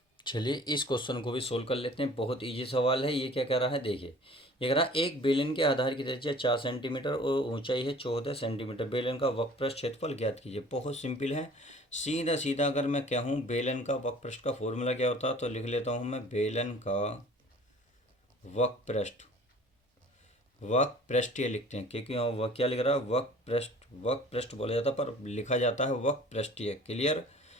चलिए इस क्वेश्चन को भी सोल्व कर लेते हैं। बहुत इजी सवाल है। ये क्या कह रहा है, देखिए ये कह रहा है एक बेलन के आधार की त्रिज्या 4 सेंटीमीटर और ऊंचाई है 14 सेंटीमीटर, बेलन का वक्रपृष्ठ क्षेत्रफल ज्ञात कीजिए। बहुत सिंपल है, सीधा सीधा अगर मैं कहूँ बेलन का वक्रपृष्ठ का फॉर्मूला क्या होता है, तो लिख लेता हूँ मैं, बेलन का वक्रपृष्ठ, वक्रपृष्ठीय लिखते हैं क्योंकि वह क्या लिख रहा है, वक्रपृष्ठ, वक्रपृष्ठ बोला जाता है पर लिखा जाता है वक्रपृष्ठीय। क्लियर।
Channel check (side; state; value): both; normal; correlation 0.48